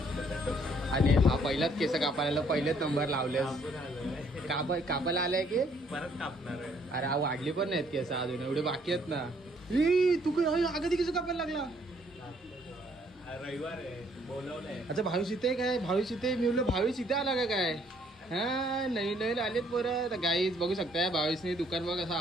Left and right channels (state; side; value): normal; both; correlation 0.65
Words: आणि हा पहिलाच केस कापायला पहिलेच नंबर लावले. कापायला आलाय की परत कापणार आहे. अरे हा वाढली पण नाहीत केस अजून, एवढे बाकी आहेत ना. तू अगदी केस कापायला लागला. रविवार आहे बोलवलंय. अच्छा भावेश इथे काय? भावेश इथे मी बोललो भावेश इथे आला काय? हा नवीन नवीन आलेत परत. गाईज बघू शकताय भावेशने दुकान बघ असा